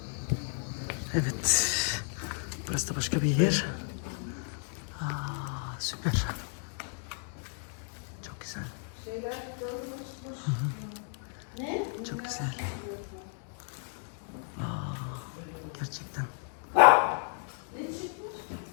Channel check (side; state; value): right; silent; 56 dB below the other